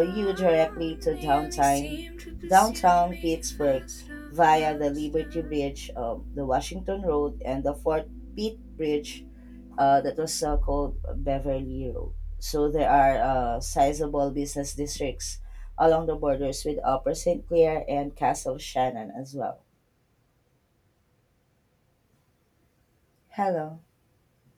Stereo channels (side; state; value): both; identical; correlation 1.00